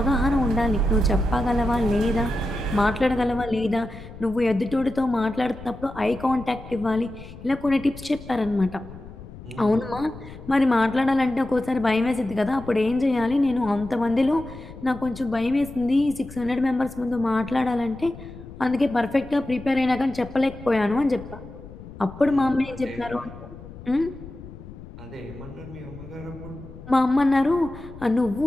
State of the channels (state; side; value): noise; left; rumble, 15 dB below the sound